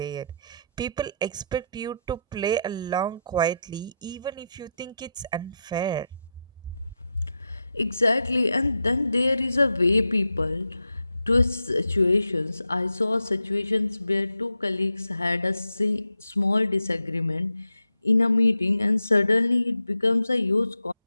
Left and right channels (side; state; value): both; inverted; correlation -0.84